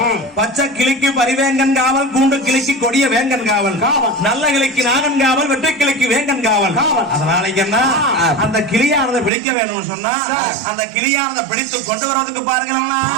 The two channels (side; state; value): left; drops out; at 9.3 s